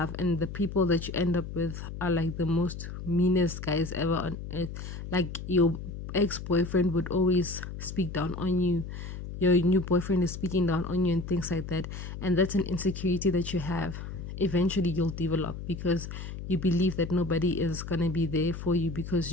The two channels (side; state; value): left; noise; hum, 8 dB below the sound